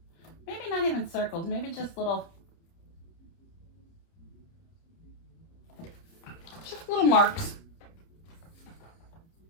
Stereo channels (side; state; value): right; late; 30 ms